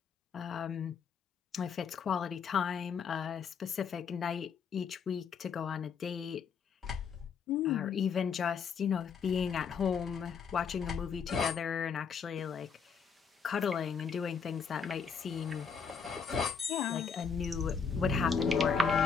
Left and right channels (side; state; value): right; quieter; 6.2 dB